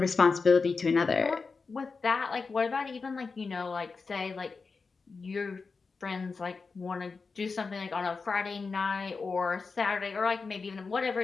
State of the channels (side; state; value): right; quieter; 4.5 dB